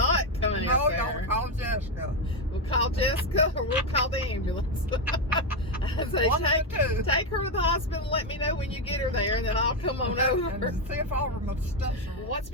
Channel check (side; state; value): both; normal; correlation 0.08